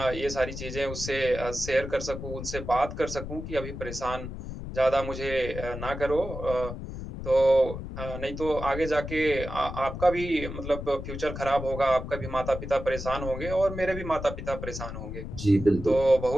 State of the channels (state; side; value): noise; left; rumble, 8 dB below the sound